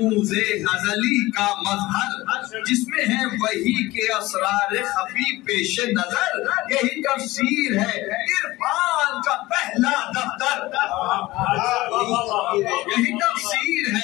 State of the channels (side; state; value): right; quieter; 18.9 dB